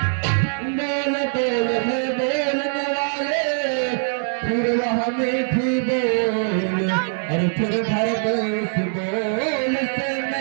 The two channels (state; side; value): silent; left; digital silence